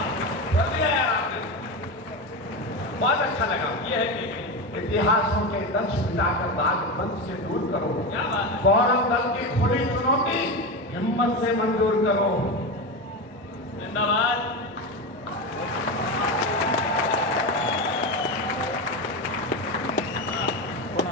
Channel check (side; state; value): both; normal; correlation 0.19